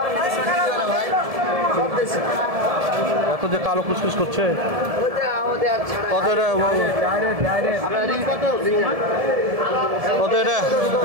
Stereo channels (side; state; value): left; late; 1.7 ms